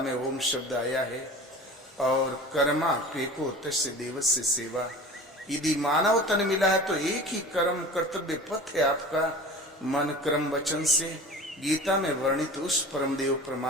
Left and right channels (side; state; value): both; normal; correlation 0.38